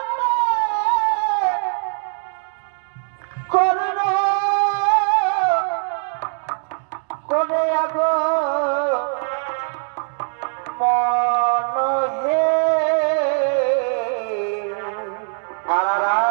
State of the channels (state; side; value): silent; left; 65 dB below the other